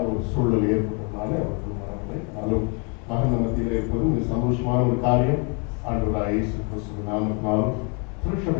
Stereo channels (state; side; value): quieter; right; 35.0 dB